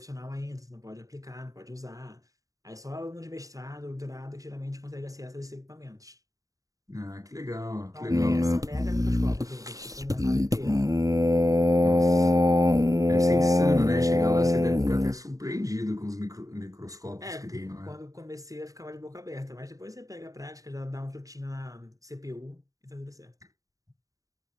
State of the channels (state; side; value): late; left; 0.16 ms